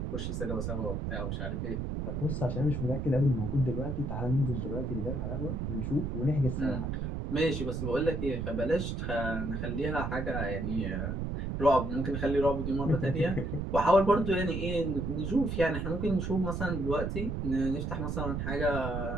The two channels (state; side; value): noise; right; rumble, 2 dB below the sound